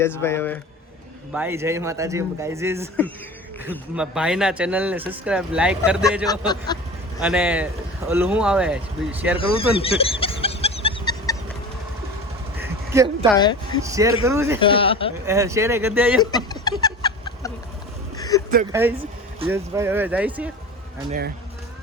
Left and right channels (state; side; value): normal; both; correlation 0.35